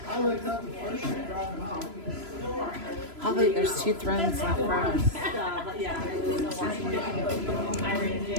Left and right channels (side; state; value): left; late; 3.0 ms